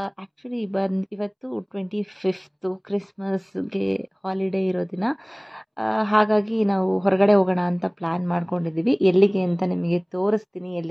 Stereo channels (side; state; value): both; identical; correlation 1.00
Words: Actually ಇವತ್ತು 25th ಕ್ರಿಸ್ಮಸ್ಗೆ holiday ಇರೋ ದಿನ. ಹಾಗಾಗಿ ನಾವು ಹೊರಗಡೆ ಹೋಗೋಣ ಅಂತ ಪ್ಲ್ಯಾನ್ ಮಾಡ್ಕೊಂಡಿದ್ದೀವಿ. ಎಲ್ಲಿಗೆ ಅಂತ ನಿಮಗೆ ತೋರಿಸ್ತೀನಿ